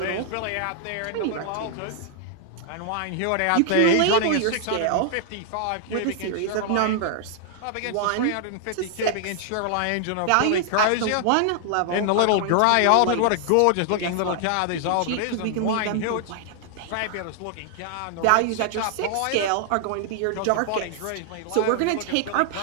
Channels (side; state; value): both; different; correlation 0.00